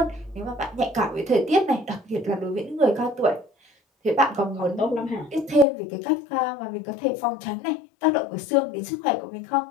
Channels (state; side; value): drops out; right; at 5.7 s